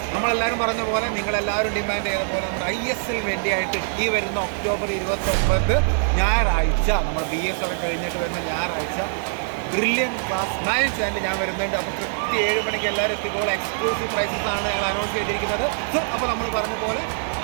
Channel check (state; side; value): silent; left; digital silence